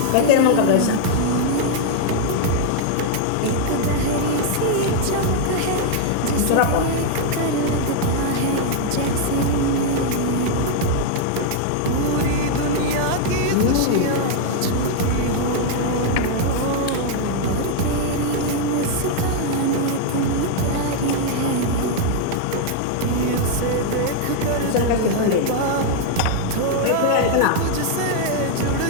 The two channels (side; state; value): both; different; correlation 0.00